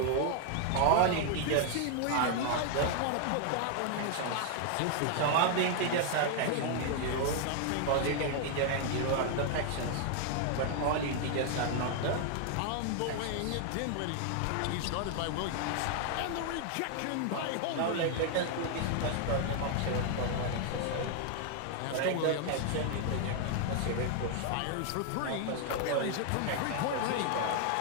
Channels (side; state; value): both; different; correlation 0.00